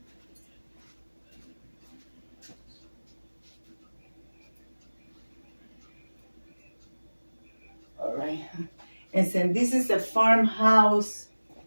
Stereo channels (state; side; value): inverted; both; correlation -1.00